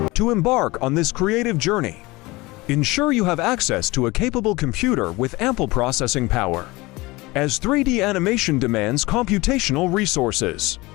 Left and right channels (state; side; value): quieter; right; 22.0 dB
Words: to embark on this creative journey. Ensure you have access to a capable computer with ample processing power, as 3D animation demands computational resources.